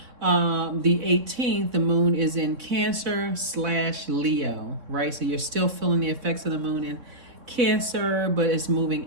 the 18th, the moon is in Cancer/Leo, right? So you're still feeling the effects of the moon in Cancer, but it's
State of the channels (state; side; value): late; left; 3.6 ms